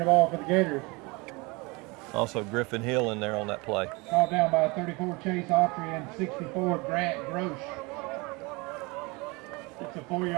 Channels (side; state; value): left; quieter; 26.2 dB